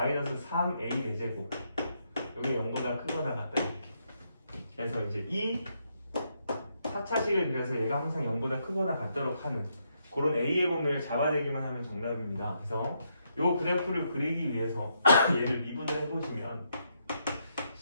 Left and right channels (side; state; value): both; inverted; correlation -0.78